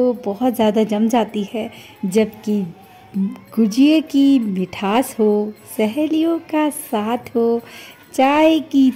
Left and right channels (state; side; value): identical; both; correlation 1.00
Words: बहुत ज़्यादा जम जाती है, जबकि गुजिये की मिठास हो, सहेलियों का साथ हो, चाय की